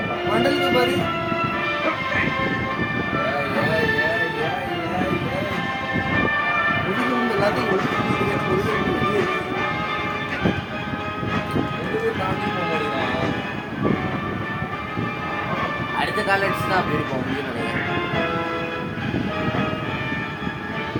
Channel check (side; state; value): both; identical; correlation 1.00